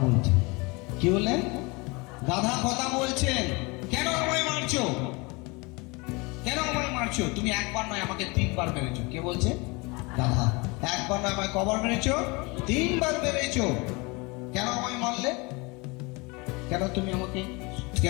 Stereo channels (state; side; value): quieter; right; 26.9 dB